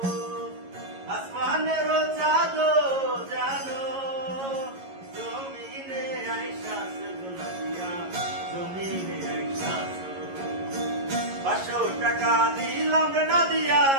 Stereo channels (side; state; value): left; late; 11 ms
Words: আসমানের চাঁদ জানো জমিনে আইসাছ গোনা দিয়া, জমিনে আইসাছ। 500 টাকা দিলাম না দিয়া